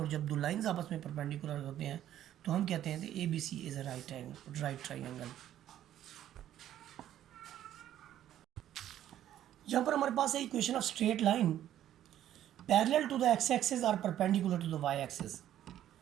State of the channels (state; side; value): quieter; left; 11.8 dB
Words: जब दो लाइंस आपस में परपेंडिकुलर होते हैं तो हम कहते हैं कि ABC is a right triangle. यहाँ पर हमारे पास है equation of straight line parallel to the x axis और perpendicular to the y axis.